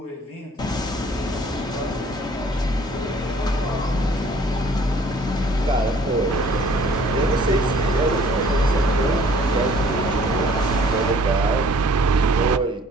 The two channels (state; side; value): normal; both; correlation 0.55